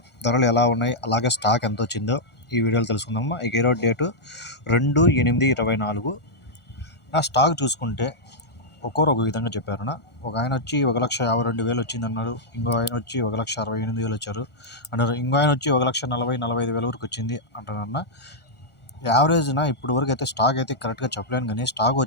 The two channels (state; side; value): late; right; 1.4 ms